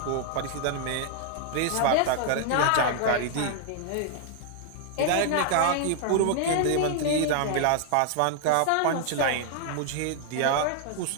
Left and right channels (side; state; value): both; different; correlation 0.00